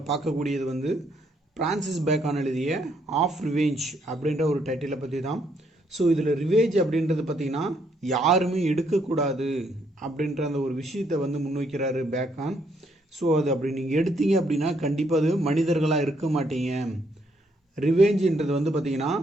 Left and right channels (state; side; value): normal; both; correlation 0.72